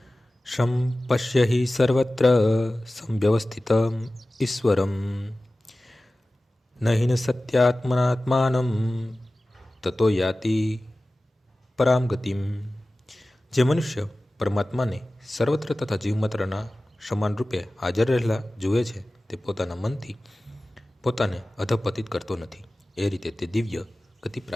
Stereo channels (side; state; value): both; normal; correlation 0.96